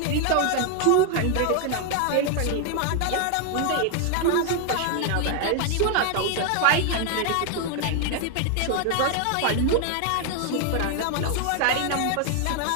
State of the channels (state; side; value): different; both; correlation 0.00